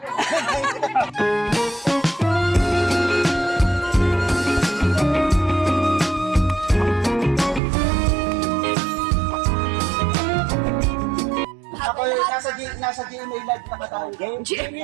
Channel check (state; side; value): drops out; left; at 7.6 s